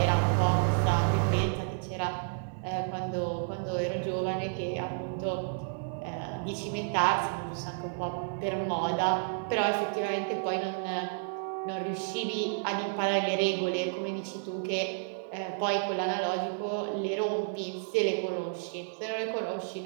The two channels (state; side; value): silent; left; digital silence